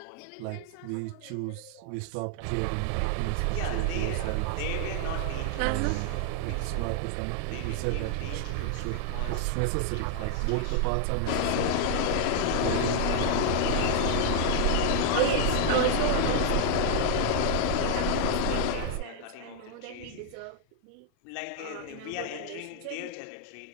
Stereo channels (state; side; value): different; both; correlation 0.00